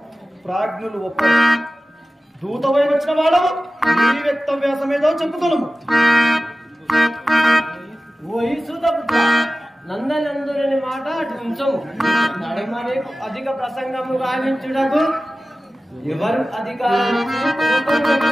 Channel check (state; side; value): normal; both; correlation 0.97